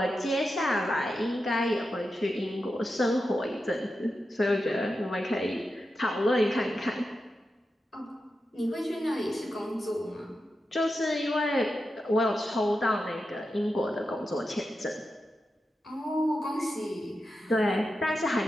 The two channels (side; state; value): both; normal; correlation 0.90